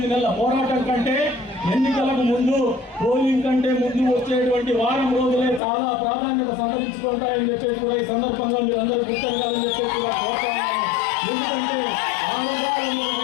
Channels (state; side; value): drops out; right; at 5.6 s